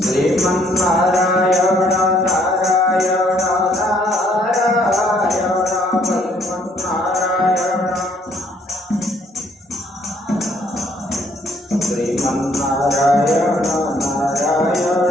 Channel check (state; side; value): normal; both; correlation 0.65